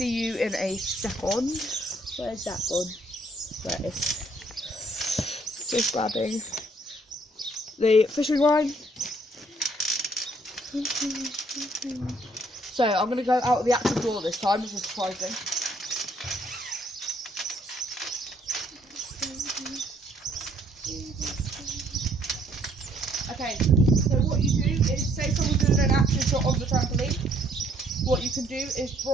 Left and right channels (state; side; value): normal; both; correlation 0.65